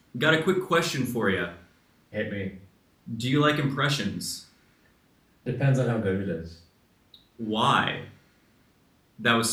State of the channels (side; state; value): both; identical; correlation 1.00